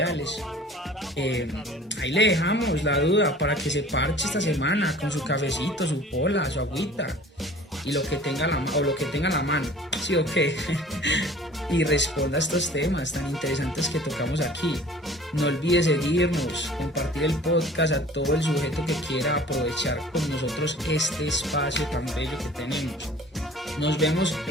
Ahí le dejamos la duda para que se parche esta semana con su cafecito, su pola, su agüita y lo que tenga a la mano, ¿sí o qué? Y responda a estos temas tan interesantes que tocamos aquí. No olvide seguirnos, compartir el podcast a todo el sujeto que quiera aprovechar con nosotros este espacio tan bello que tenemos. Nos vemos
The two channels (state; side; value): normal; both; correlation 0.47